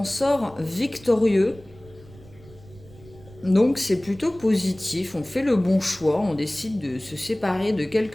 sort victorieux. Donc c'est plutôt positif, on fait le bon choix, on décide de se séparer de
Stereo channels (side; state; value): right; noise; rumble, 22 dB below the sound